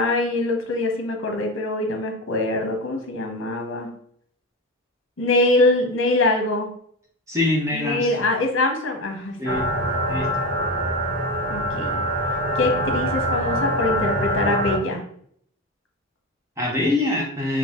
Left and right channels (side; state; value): both; normal; correlation 0.20